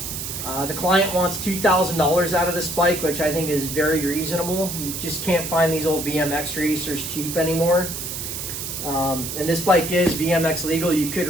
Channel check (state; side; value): noise; right; hiss, 6 dB below the sound